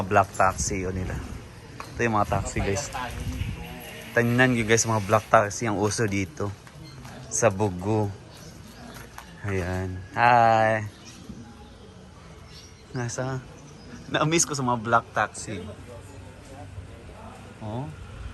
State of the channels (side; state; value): both; identical; correlation 1.00